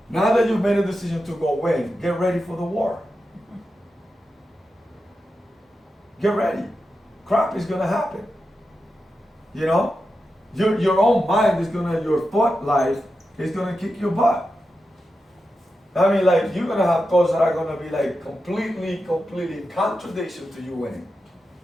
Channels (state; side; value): normal; both; correlation 0.90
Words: Now that you've made a decision to go win, get ready for the war. Get ready. Crap is going to happen. You know? Your own mind is going to, your thought life is going to kick your butt. I mean, like, you're going to have thoughts that are going to be like completely in contradiction to you winning.